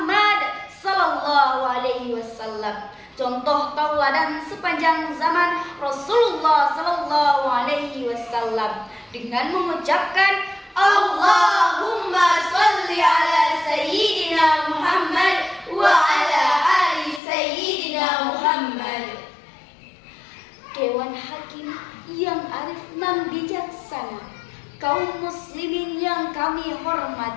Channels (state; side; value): drops out; right; at 17.2 s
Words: sallallahu alaihi wasallam, contoh tauladan sepanjang zaman Rasulullah sallallahu alaihi wasallam, dengan mengucapkan Allahumma sholli ala sayyidina Muhammad wa ala ali sayyidina Muhammad. Dewan Hakim yang arif dan bijaksana, kaum muslimin yang kami